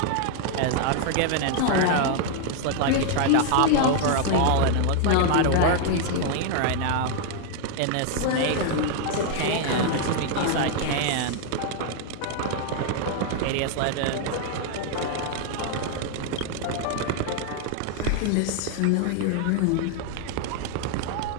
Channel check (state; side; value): different; both; correlation 0.00